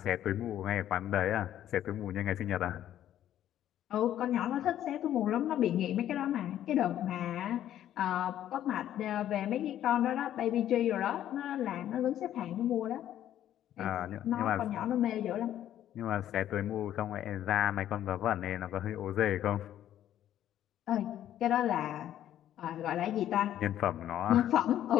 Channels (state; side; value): quieter; right; 11.6 dB